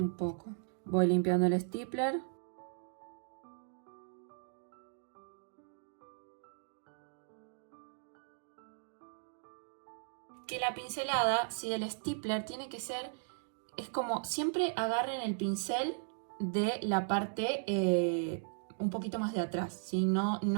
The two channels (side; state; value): left; silent; digital silence